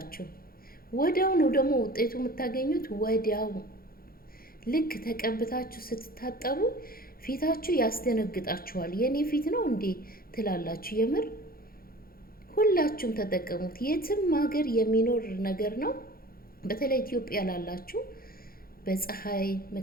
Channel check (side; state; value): right; late; 0.43 ms